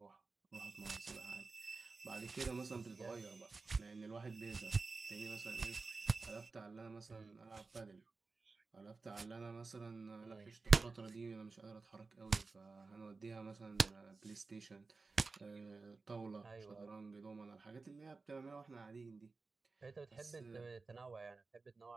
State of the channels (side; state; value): left; quieter; 4.0 dB